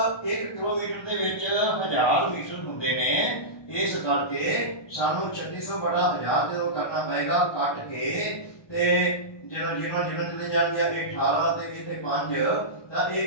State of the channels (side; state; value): right; late; 1.2 ms